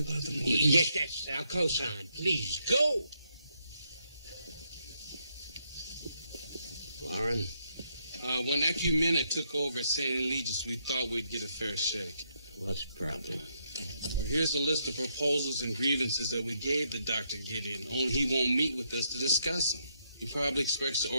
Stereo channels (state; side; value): inverted; both; correlation -0.77